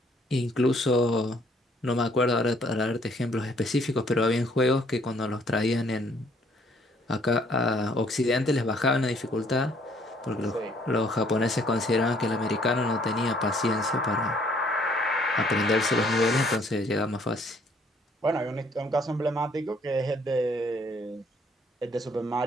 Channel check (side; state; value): both; normal; correlation 0.63